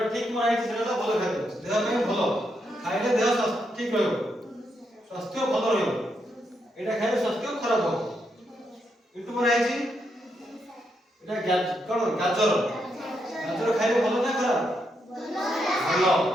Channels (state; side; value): normal; both; correlation 0.80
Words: ঠিক মনে হইছে সেটা হলো ভালো খাদ্য, দেহ ପାଇଁ ଭଲ, খাইলে দেহ ঠিক ରହିବ, স্বাস্থ্য ଭଲ ରହିବ। এটা খাইলে স্বাস্থ্য খারাপ হবে। কিন্তু মনে হইছে এটা কোন গাজর, গাজর খাইলে ভালো না খারাপ? ভালো।